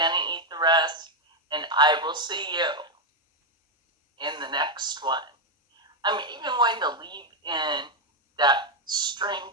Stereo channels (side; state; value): both; normal; correlation 0.03